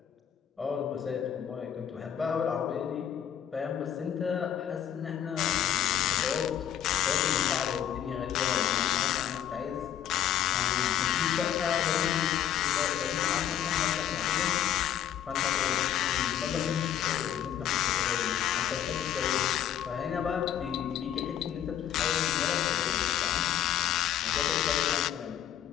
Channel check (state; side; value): quieter; right; 10.3 dB